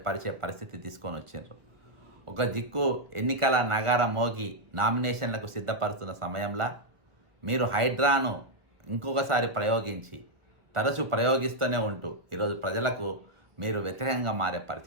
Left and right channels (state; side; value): late; left; 1.1 ms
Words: పరిచే పరిస్థితి తీసుకొని వచ్చారు. ఒక దిక్కు ఎన్నికల నగార మోగి నామినేషన్లకు సిద్ధపరుస్తున్న సమయంలో మీరు హైడ్రాను ఇంకొకసారి ప్రయోగించి తరచూ ప్రయోగిస్తూనే ఉంటూ ఈరోజు ప్రజలకు మీరు వ్యతిరేకంగా మారే